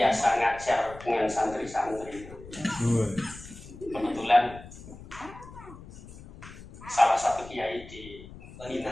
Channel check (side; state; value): left; noise; rumble, 17 dB below the sound